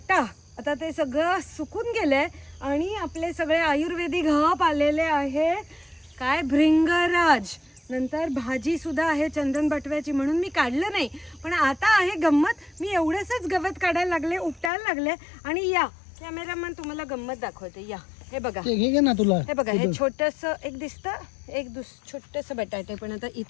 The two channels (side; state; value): right; drops out; at 14.7 s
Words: आता ते सगळं सुकून गेलंय आणि आपले सगळे आयुर्वेदिक हब आलेले आहे. काय भृंगराज, नंतर भाजी सुद्धा आहे चंदन बटव्याची, म्हणून मी काढलं नाही. पण आता आहे गंमत, मी एवढंच गवत काढायला लागले, उपटायला लागले. आणि या कॅमेरामॅन तुम्हाला गंमत दाखवते. या हे बघा, घे ना तुला. हे बघा, हे छोटंसं एक दिसतं, एक छोटंसं बटाटे. पण आता